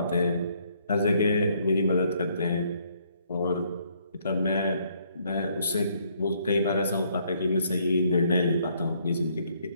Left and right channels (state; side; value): inverted; both; correlation -0.68